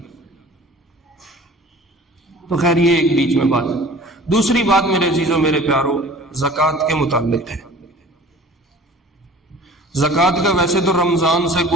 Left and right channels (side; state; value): both; normal; correlation 0.45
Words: تو خیر یہ ایک بیچ میں بات ہے۔ دوسری بات میرے عزیزوں میرے پیاروں زکوٰۃ کے متعلق ہے۔ زکوٰۃ کا ویسے تو رمضان سے